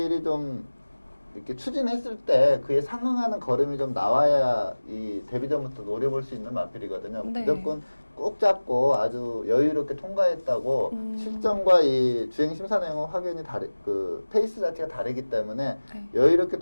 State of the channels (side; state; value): both; inverted; correlation -1.00